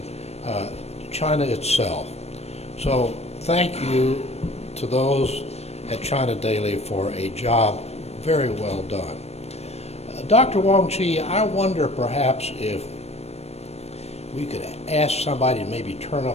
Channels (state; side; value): late; right; 0.31 ms